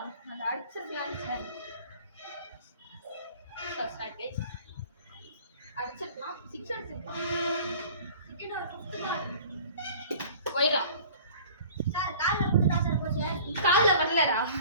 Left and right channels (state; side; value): inverted; both; correlation -0.46